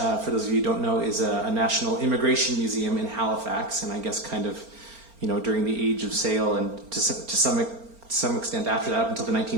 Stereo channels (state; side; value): late; left; 4.4 ms